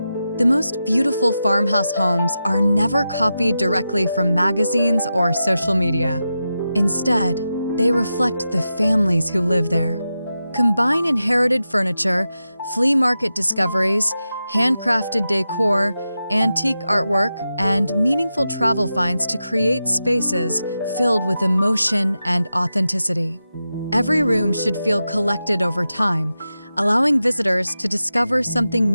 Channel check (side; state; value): both; inverted; correlation -0.91